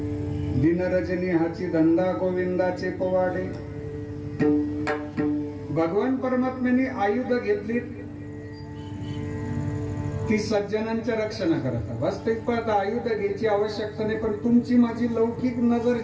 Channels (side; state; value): both; identical; correlation 1.00